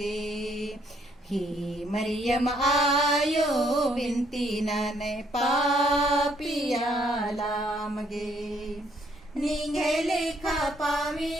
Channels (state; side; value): normal; both; correlation 0.68